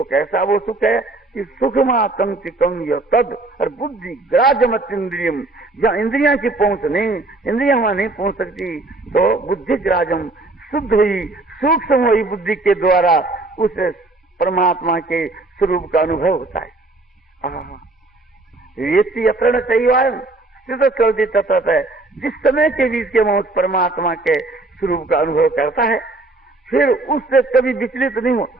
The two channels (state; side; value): quieter; left; 3.0 dB